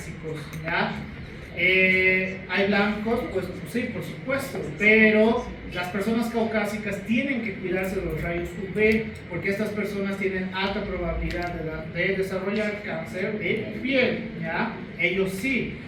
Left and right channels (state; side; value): identical; both; correlation 1.00